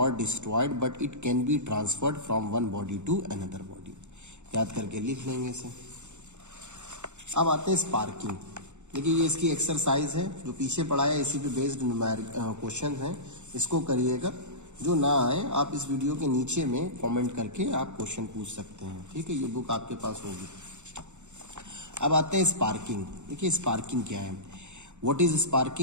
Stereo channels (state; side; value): late; left; 0.84 ms